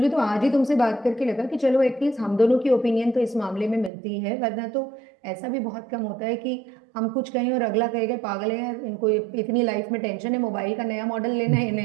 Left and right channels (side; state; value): left; drops out; at 3.9 s